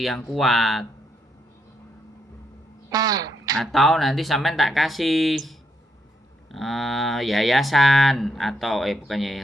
yang kuat. Atau nanti sampean tak kasih yayasan atau bukan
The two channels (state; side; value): normal; both; correlation 0.77